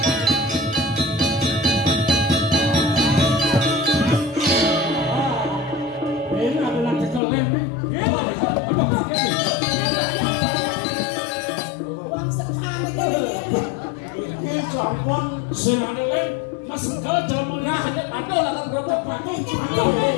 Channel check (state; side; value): drops out; right; at 7.2 s